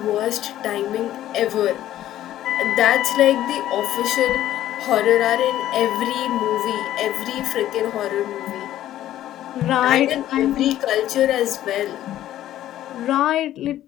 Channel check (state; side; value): quieter; right; 12.9 dB